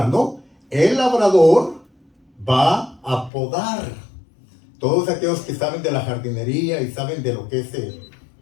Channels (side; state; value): right; drops out; at 3.3 s